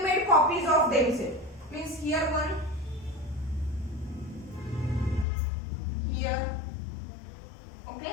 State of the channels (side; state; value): right; drops out; at 5.2 s